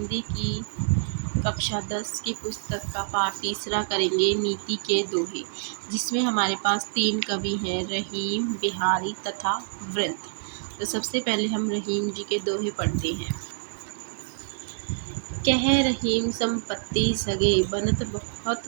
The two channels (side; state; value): left; silent; digital silence